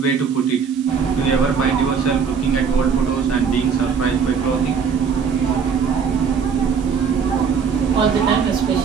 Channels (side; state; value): left; quieter; 6.2 dB